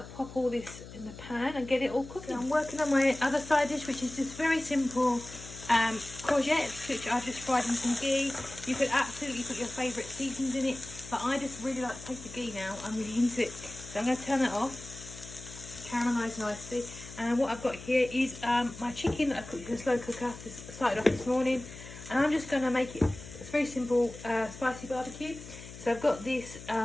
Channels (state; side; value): noise; left; hum, 14 dB below the sound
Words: pop all this in the pan and get it all cooking. So I'm working on my other side dish, which is just very simple courgettes, which I've just fried in some ghee. You could absolutely put your favourite seasonings in it, but I just really like the taste of ghee now. I'm really into it. So I'm going to turn that off, caramelise nicely. And what I've got here is my chicken that I cooked in a slow cooker. Just started off this morning, and I'm just going to make it, it's very simple, spicy barbecue. So I've got this